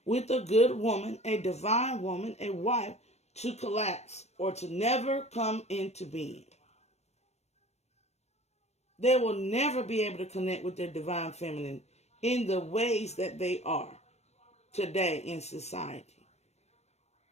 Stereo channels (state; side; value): late; right; 0.31 ms